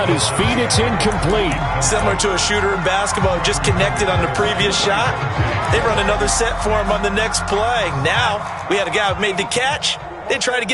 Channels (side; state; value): both; identical; correlation 1.00